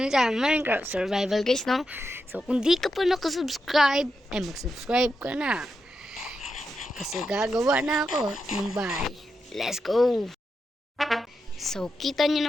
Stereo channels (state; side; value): normal; both; correlation 0.86